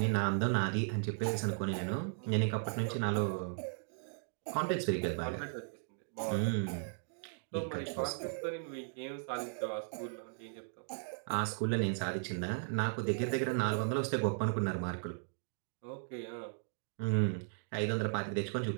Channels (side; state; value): left; silent; digital silence